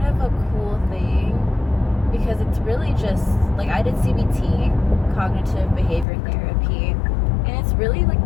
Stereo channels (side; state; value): right; drops out; at 6.1 s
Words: of a cool thing because it's really just like, I did CBT, cognitive behavior therapy, and it's really like